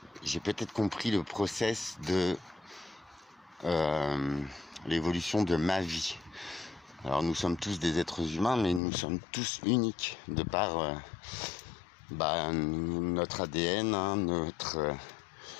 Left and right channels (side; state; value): right; drops out; at 8.8 s